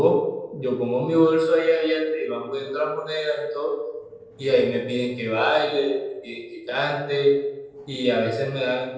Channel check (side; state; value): both; identical; correlation 1.00